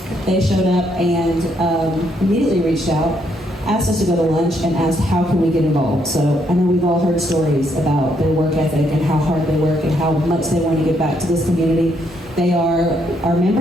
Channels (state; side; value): normal; both; correlation 0.73